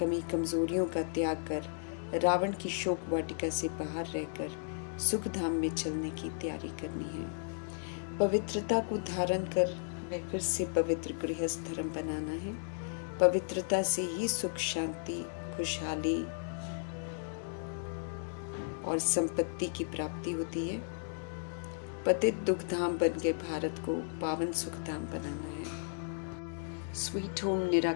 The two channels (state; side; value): silent; right; digital silence